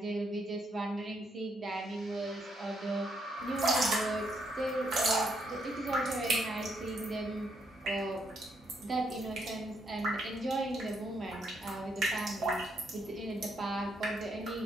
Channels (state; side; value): normal; both; correlation 0.74